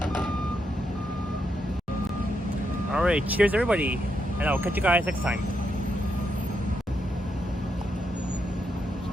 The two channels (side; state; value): both; normal; correlation 0.81